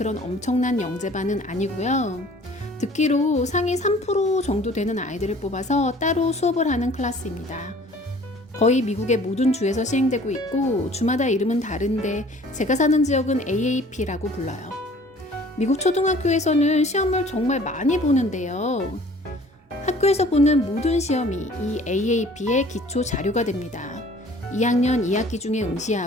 엄청난 영재반은 아니고요. 듣기로 상위 3% 정도 되는 아이들을 뽑아서 따로 수업을 하는 클래스입니다. 거의 미국의 모든 주에서 시행되고 있고 주마다 이름은 다른데 제가 사는 지역은 AAP라고 불러요. 미국 초등학교에서는 시험을 정말 많이 보는데요. 학교에서 보는 모든 시험이 이 AAP의 기초 자료가 됩니다. 2학년 2학기 중에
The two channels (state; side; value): normal; both; correlation 0.51